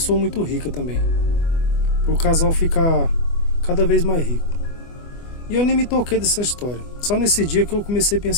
muito rica também, para o casal ficar cada vez mais rico. E eu nem me toquei dessa história. Só nesse dia que eu comecei a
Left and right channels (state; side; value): late; right; 24 ms